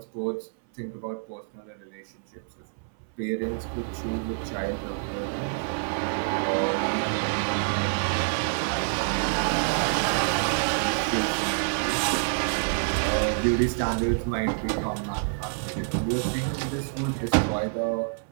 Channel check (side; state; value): left; silent; 59 dB below the other